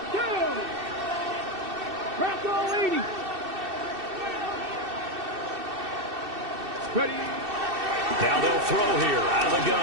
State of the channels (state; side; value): late; left; 2.6 ms